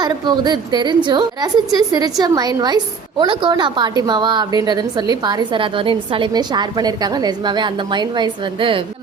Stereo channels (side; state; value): left; quieter; 5.5 dB